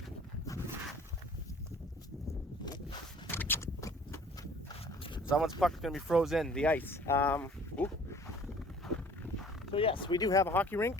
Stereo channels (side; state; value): both; normal; correlation 0.51